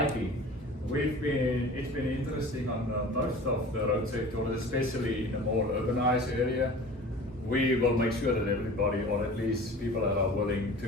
It's been interesting on most of the road safety audits, especially in a more urbanized area. We will make sure that everybody, or at least people that are willing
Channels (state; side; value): normal; both; correlation 0.41